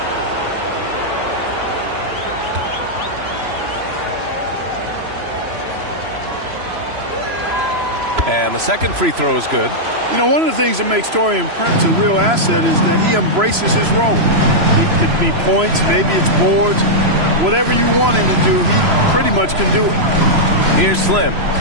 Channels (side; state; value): left; late; 3.0 ms